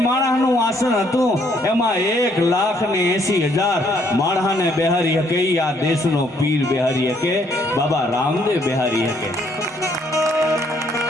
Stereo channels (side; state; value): both; normal; correlation 0.68